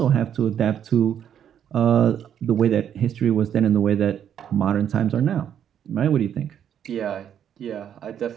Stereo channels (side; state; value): left; quieter; 9.3 dB